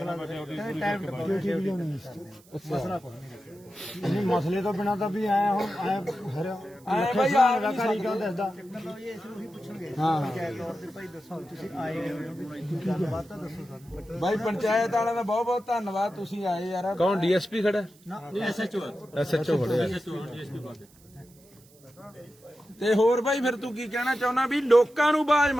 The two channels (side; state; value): right; noise; hiss, 28 dB below the sound